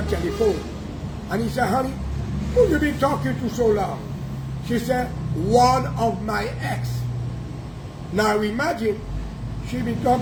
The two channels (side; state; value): both; identical; correlation 1.00